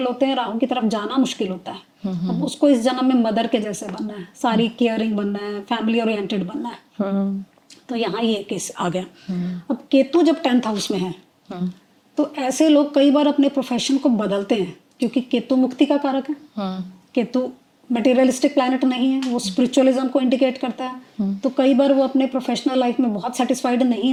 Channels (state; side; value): identical; both; correlation 1.00